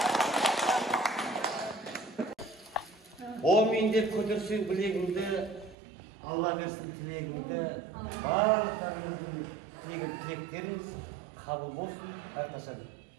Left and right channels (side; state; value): left; drops out; at 5.8 s